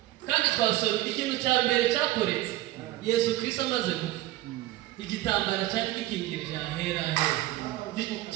kandi twasomye ikintu cya mbere cyakoretse Yesu Kristo amaze gupfa. Igitambara cyari gikingirije ahera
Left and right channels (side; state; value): left; quieter; 16.7 dB